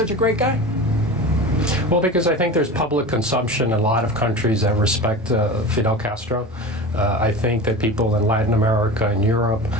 a great guy? Well, because I think there's public consumption in a lot of countries that respect Fidel Castro. I think that people in Latin America and Europe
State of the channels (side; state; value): both; normal; correlation 0.31